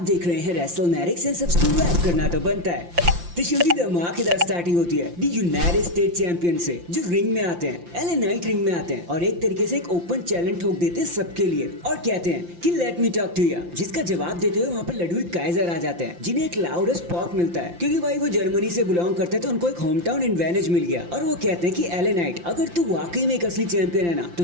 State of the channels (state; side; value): late; left; 5.8 ms